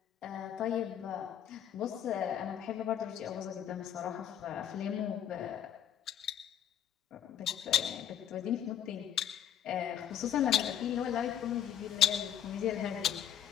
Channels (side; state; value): right; quieter; 9.7 dB